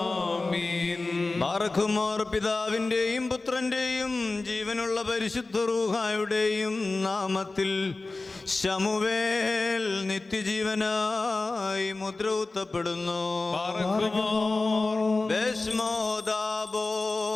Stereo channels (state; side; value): quieter; right; 3.4 dB